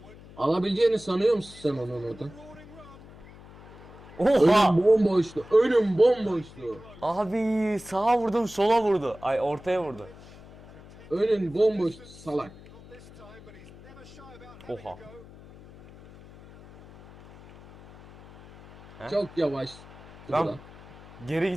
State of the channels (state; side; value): noise; left; hum, 20 dB below the sound